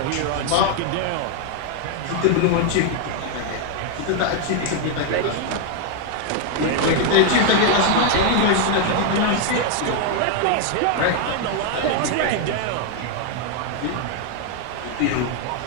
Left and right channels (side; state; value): both; different; correlation 0.00